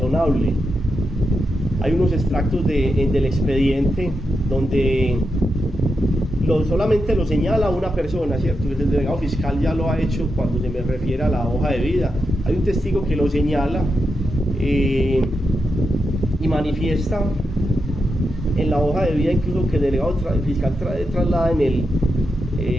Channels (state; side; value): normal; both; correlation 0.86